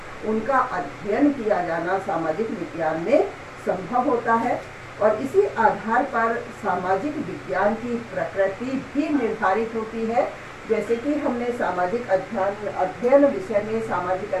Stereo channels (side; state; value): both; identical; correlation 1.00